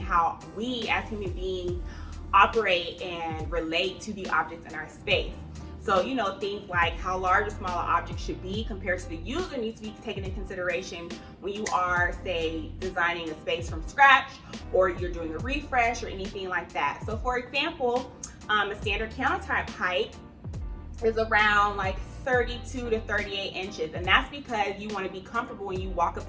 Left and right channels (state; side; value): identical; both; correlation 1.00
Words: we as human beings operate and relate to the objects in our space. So, things like how large or small an object should be compared to the user needs to be taken into consideration when you are, say, designing a space from scratch, or you're doing a refresh or anything like that. So for example, a standard countertop height is around like 32 to 38 inches. And that's because you want to be comfortable when you walk up